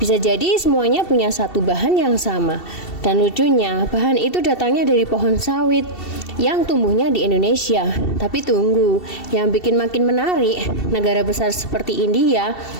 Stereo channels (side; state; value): right; late; 2.7 ms